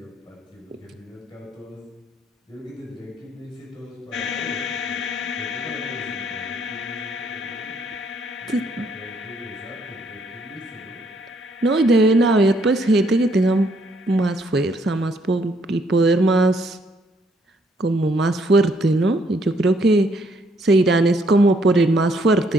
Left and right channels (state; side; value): normal; both; correlation 0.69